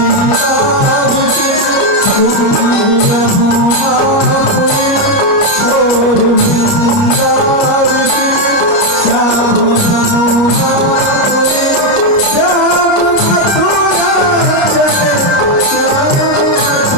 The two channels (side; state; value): right; late; 29 ms